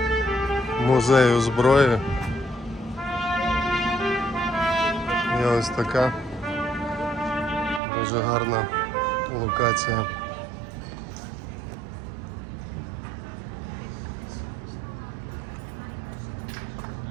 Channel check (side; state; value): left; drops out; at 7.8 s